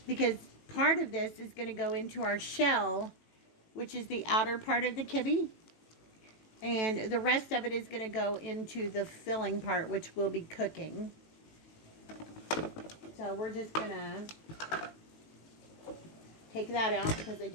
because part of this is going to go into our shell, which is the outer part of the kibbe, and the rest of it is going to go into the filling part, which will be cooking. So we're just going to take that out because I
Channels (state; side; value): late; right; 18 ms